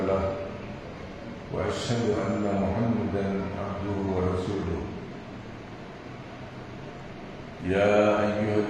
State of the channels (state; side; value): identical; both; correlation 1.00